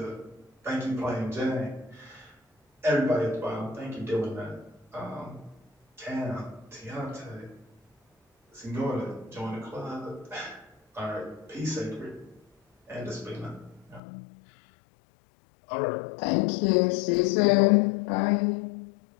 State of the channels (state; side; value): drops out; right; at 14.0 s